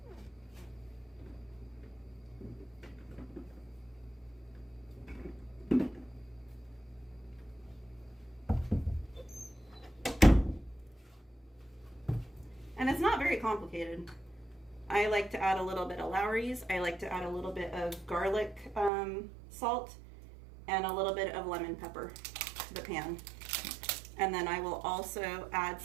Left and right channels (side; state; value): left; drops out; at 18.9 s